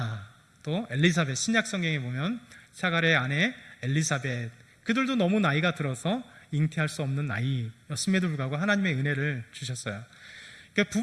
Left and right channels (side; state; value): both; identical; correlation 1.00